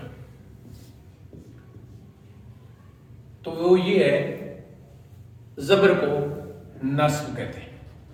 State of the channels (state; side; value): identical; both; correlation 1.00